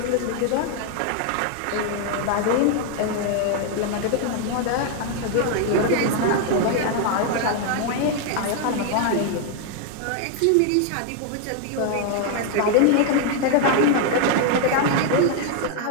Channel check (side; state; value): both; different; correlation 0.00